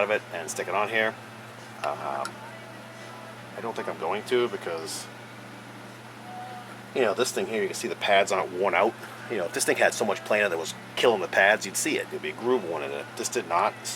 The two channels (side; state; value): both; identical; correlation 1.00